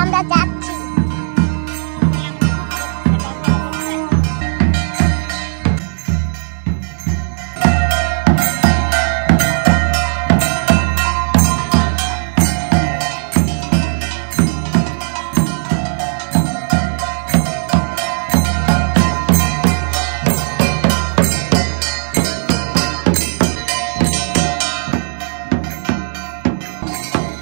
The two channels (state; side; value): silent; left; digital silence